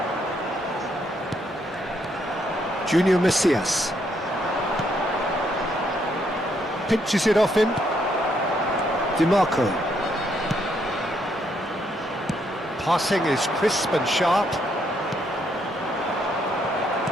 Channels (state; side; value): normal; both; correlation 0.73